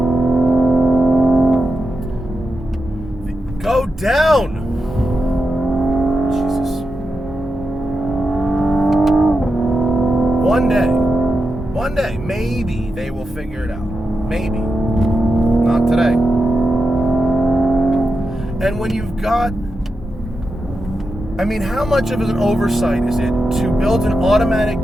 Go down! Jesus. One day, maybe they will figure it out. Maybe. Not today. And when you've got... I mean, how much of an oversight is it to build an automatic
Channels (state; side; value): normal; both; correlation 0.88